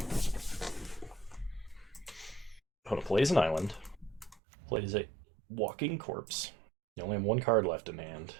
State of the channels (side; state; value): left; drops out; at 4.4 s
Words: Opponent plays an island. Plays a walking corpse. You only have one card left in hand.